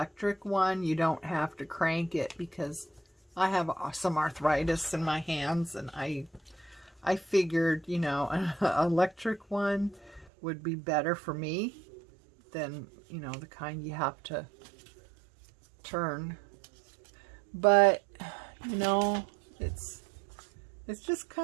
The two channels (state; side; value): drops out; left; at 10.3 s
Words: one. You don't have to crank it because I have some arthritis in my hands, and I figured, you know, an electric one would be better for me than, you know, the kind you have to turn. But, you know, it's just